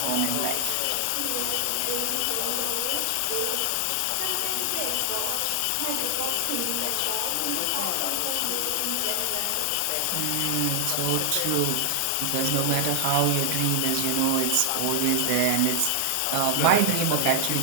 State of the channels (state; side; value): different; both; correlation 0.00